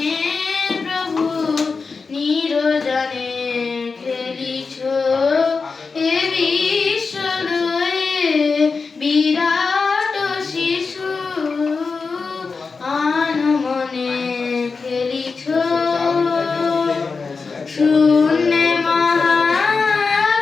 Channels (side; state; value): right; quieter; 4.6 dB